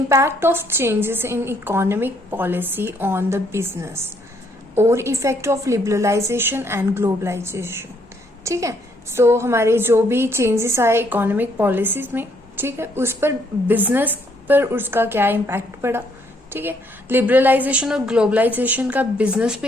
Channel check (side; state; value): both; normal; correlation 0.69